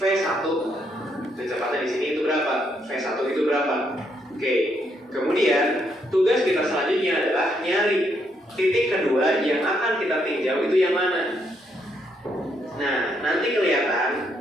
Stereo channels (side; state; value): both; normal; correlation 0.75